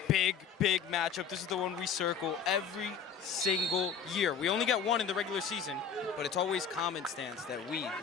Big matchup. This is the one we circle every single year. We only get one in the regular season, but it's always common stance that we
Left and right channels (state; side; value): quieter; right; 6.8 dB